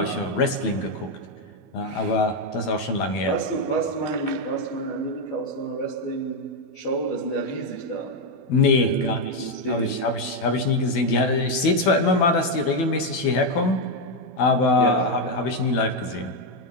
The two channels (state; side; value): late; right; 12 ms